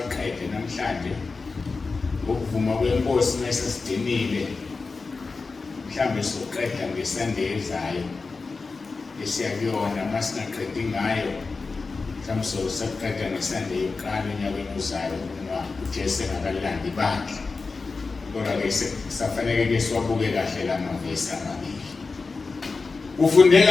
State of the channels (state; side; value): quieter; right; 4.2 dB